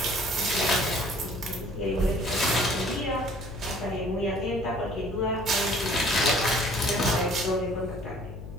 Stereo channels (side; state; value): left; noise; hum, 11 dB below the sound